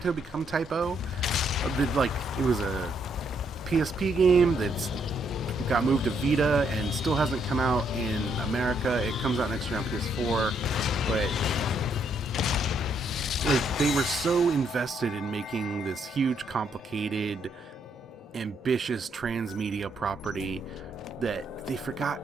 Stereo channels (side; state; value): both; normal; correlation 0.73